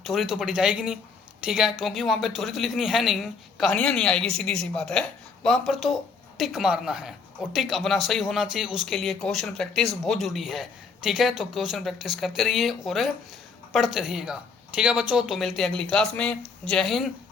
थ्योरी तो पढ़ी जाएगी नहीं, ठीक है, क्योंकि वहाँ पर थ्योरी तो लिखनी है नहीं, कहानियाँ नहीं आएगी, सीधी सी बात है। वहाँ पर तो टिक मारना है, और टिक अपना सही होना चाहिए, उसके लिए क्वेश्चन प्रैक्टिस बहुत ज़रूरी है, ठीक है। तो क्वेश्चन प्रैक्टिस करते रहिए और पढ़ते रहिएगा, ठीक है बच्चों। तो मिलते हैं अगली क्लास में। जय हिंद,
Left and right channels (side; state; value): right; quieter; 5.1 dB